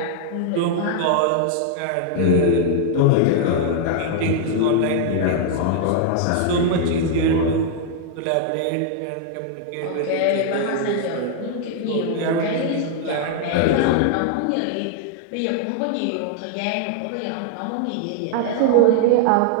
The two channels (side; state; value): both; different; correlation 0.00